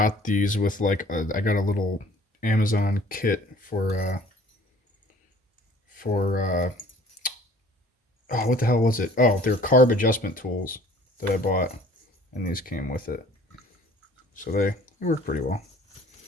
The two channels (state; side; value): normal; both; correlation 0.52